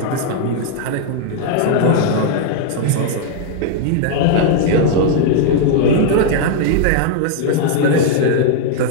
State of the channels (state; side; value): different; both; correlation 0.00